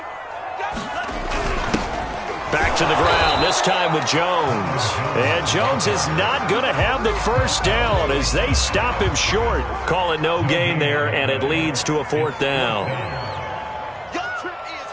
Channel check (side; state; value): both; identical; correlation 1.00